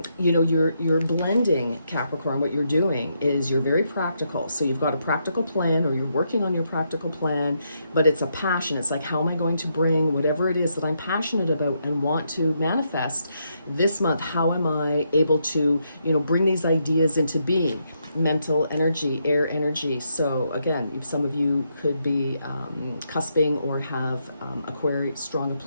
know, you're blending, Capricorn. What you're doing is you're very practical. So you've got a practical plan, or you're working on your practical plan, but it's a passion. It's like, how am I going to bring whatever it is that I'm passionate about and want to manifest this month? How am I able to, you know, bring these ideas into being? Mental energy, air energy. So again, some of you could be cusping or have strong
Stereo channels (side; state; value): both; inverted; correlation -0.79